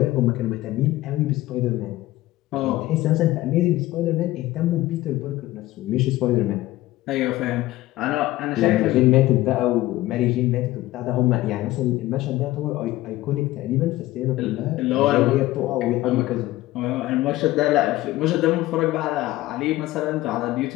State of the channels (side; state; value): right; quieter; 16.9 dB